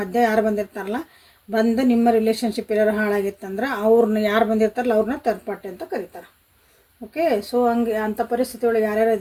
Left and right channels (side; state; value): both; identical; correlation 1.00